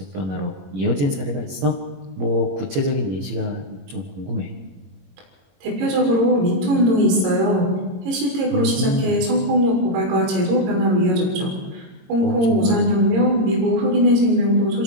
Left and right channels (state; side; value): late; left; 22 ms